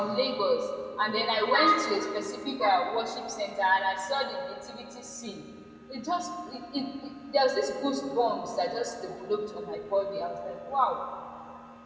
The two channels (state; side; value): identical; both; correlation 1.00